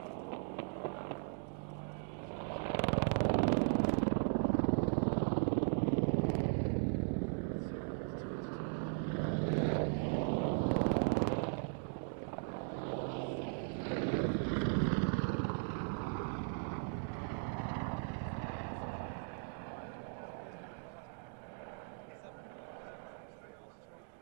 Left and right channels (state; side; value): silent; left; 52 dB below the other